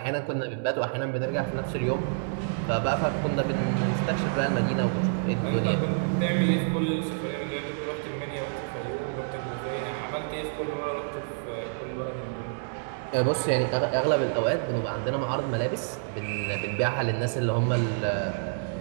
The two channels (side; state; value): left; silent; digital silence